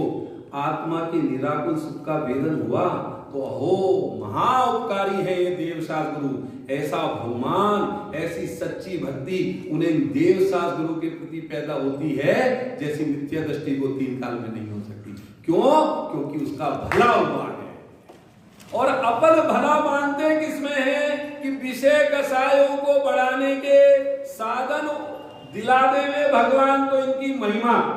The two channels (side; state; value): both; identical; correlation 1.00